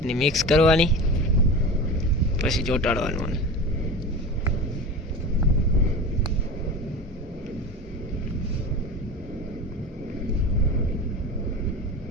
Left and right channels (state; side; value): normal; both; correlation 0.31